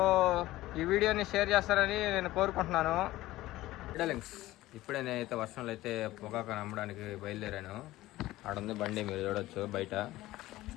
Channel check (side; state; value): right; quieter; 16.8 dB